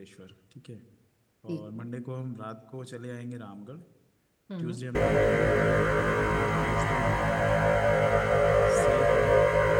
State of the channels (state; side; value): identical; both; correlation 1.00